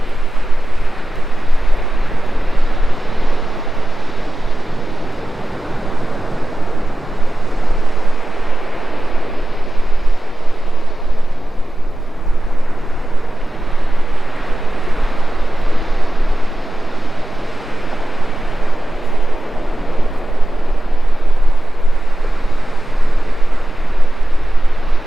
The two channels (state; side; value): normal; both; correlation 0.94